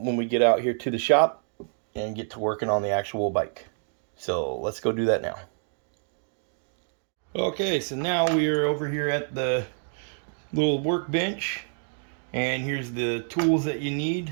we get out here to the shop and get to working on the actual bike. So let's go do that now. Okay, so now we are over here at the little workbench, and here's the tools that you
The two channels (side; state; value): left; silent; 60 dB below the other